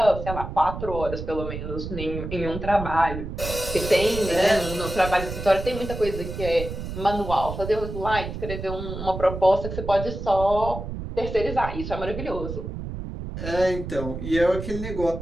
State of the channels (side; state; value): right; noise; rumble, 7 dB below the sound